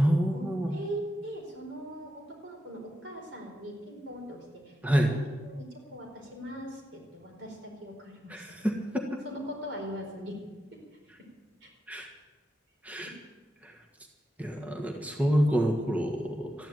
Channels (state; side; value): normal; both; correlation 0.87